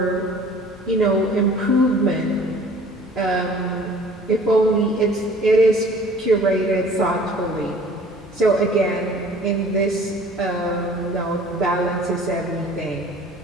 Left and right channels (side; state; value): both; normal; correlation 0.50